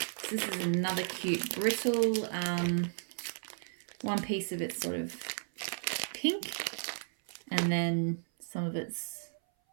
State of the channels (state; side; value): silent; left; 55 dB below the other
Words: So this is another cute brittle. One piece of it's sort of pink, and then some of it's,